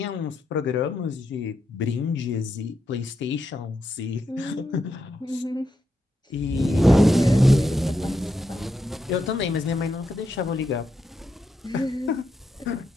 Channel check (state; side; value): normal; both; correlation 0.83